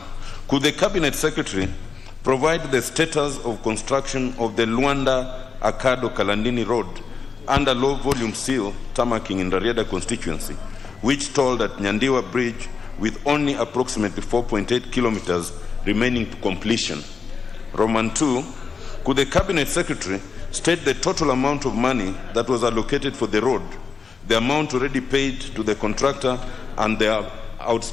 could the Cabinet Secretary provide the status of construction of the Luanda-Akado Kalandini Road under low volume seal tarmacking in the Rieda constituency, which told at Nyandiwa Bridge with only approximately 4.8 kilometers remaining to completion? Roman 2, could the Cabinet Secretary state the total amount of money that was allocated for the road, the amount already paid to the contractor, and the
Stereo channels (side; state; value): right; quieter; 5.3 dB